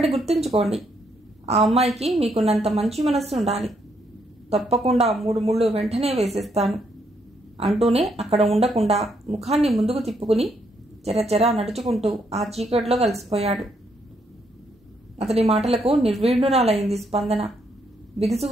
గుర్తుంచుకోండి, ఆ అమ్మాయికి మీకున్నంత మంచి మనస్సు ఉండాలి. తప్పకుండా 3 ముళ్ళు వెంటనే వేసేస్తాను అంటూనే అక్కడ ఉండకుండా ముఖాన్ని ముందుకు తిప్పుకుని చెరచెరా నడుచుకుంటూ ఆ చీకట్లో కలిసిపోయాడు. అతడి మాటలకు నిర్వీణురాలైంది స్పందన.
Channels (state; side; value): normal; both; correlation 0.74